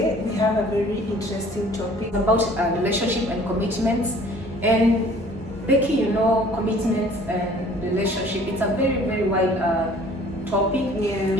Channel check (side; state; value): both; normal; correlation 0.52